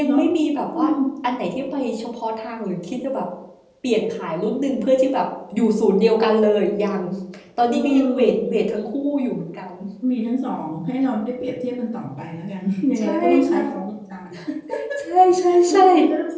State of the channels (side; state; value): both; identical; correlation 1.00